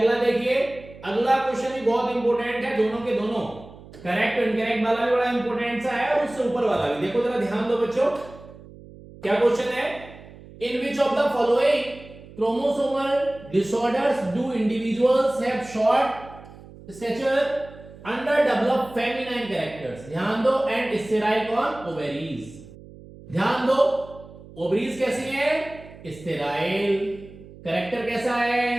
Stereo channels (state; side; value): noise; right; hum, 19 dB below the sound